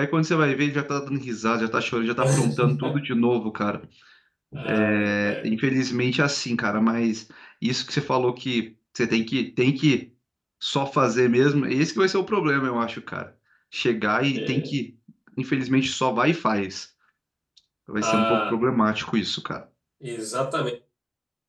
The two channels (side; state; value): both; identical; correlation 1.00